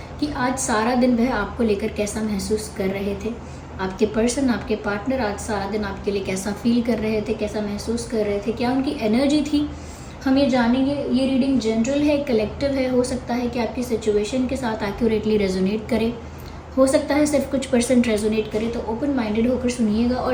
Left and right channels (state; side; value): identical; both; correlation 1.00